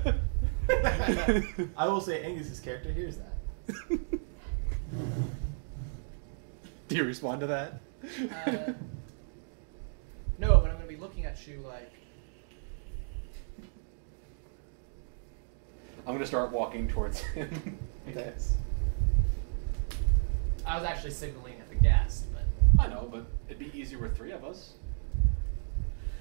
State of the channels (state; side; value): silent; left; digital silence